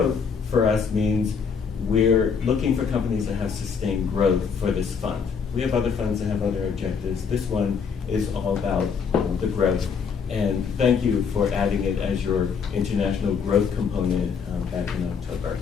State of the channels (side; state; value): right; quieter; 6.1 dB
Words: for us means we're looking for companies that have sustained growth for this fund. We have other funds that have other objectives. This one is all about the growth. And thank you for adding it as your international growth component back in October.